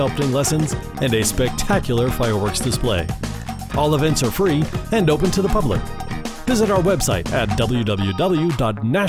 lessons and a spectacular fireworks display. All events are free and open to the public. Visit our website at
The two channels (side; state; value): both; identical; correlation 1.00